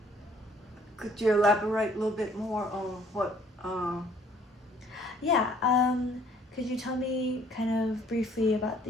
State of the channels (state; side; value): normal; both; correlation 0.59